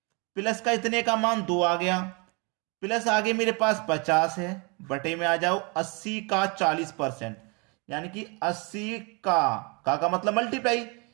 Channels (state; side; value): quieter; left; 31.1 dB